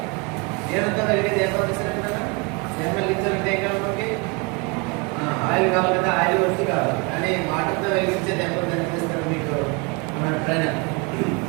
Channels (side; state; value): left; quieter; 29.6 dB